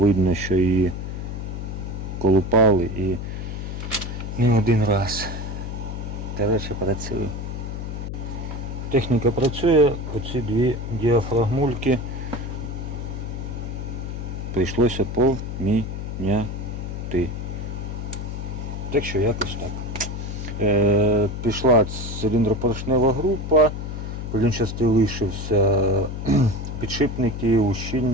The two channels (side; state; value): left; noise; hum, 6 dB below the sound